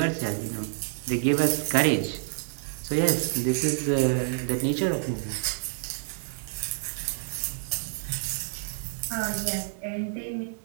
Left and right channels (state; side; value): silent; left; digital silence